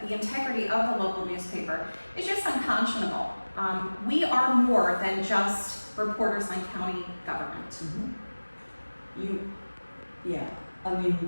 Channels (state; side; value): inverted; both; correlation -1.00